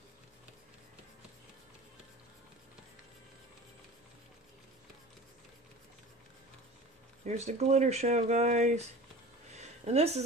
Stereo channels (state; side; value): normal; both; correlation 0.38